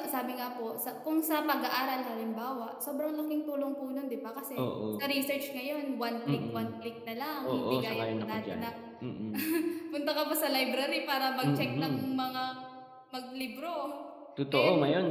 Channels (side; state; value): both; identical; correlation 1.00